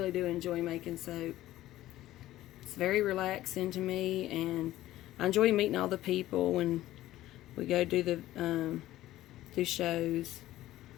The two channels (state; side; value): quieter; right; 15.1 dB